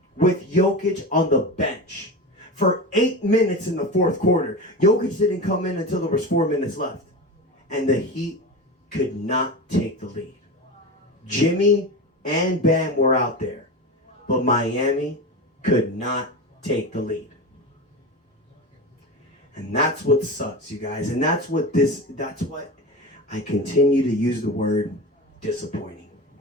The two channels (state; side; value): normal; both; correlation 0.25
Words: with Jokic on the bench for 8 minutes in the fourth quarter. Jokic didn't come in until there was 4 minutes left. And the Heat could not take the lead. Jimmy and Bam were out there, but Miami could not take the lead. And that's what sucks, you guys. And that's what I continue to use the word disappointing.